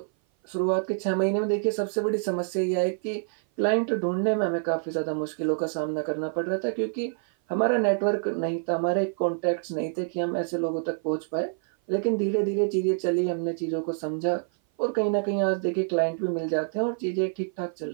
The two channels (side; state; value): left; silent; 56 dB below the other